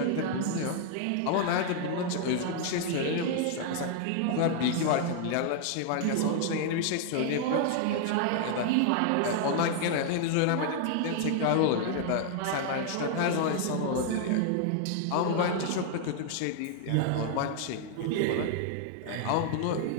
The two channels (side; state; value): both; different; correlation 0.00